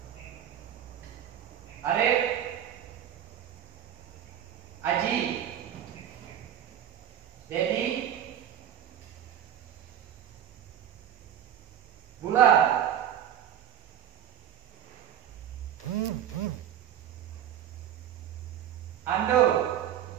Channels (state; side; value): quieter; left; 10.1 dB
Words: Arif, Aji, Dedi, Bulan, Ando,